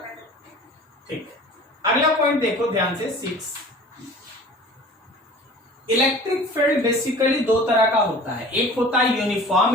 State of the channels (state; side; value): normal; both; correlation 0.43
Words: ठीक। अगला पॉइंट देखो ध्यान से, 6। इलेक्ट्रिक फील्ड बेसिकली दो तरह का होता है, एक होता है